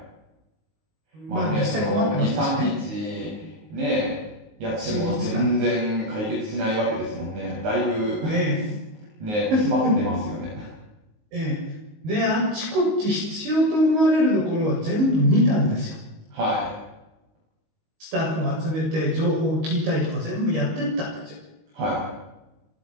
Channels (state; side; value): late; left; 19 ms